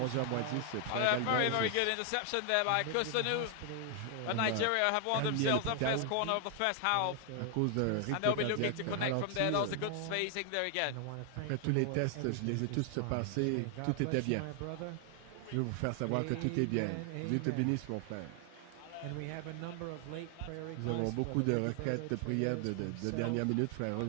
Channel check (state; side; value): different; both; correlation 0.00